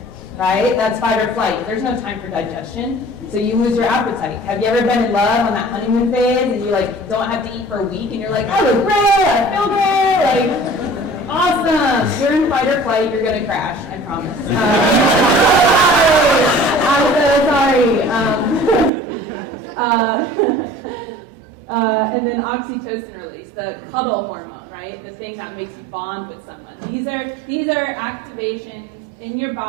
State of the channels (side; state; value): left; drops out; at 18.9 s